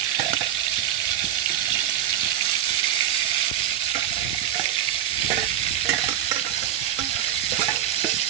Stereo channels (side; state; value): left; quieter; 11.2 dB